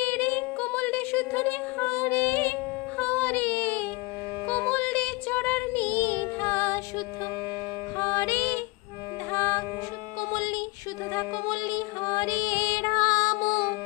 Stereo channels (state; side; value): quieter; right; 24.5 dB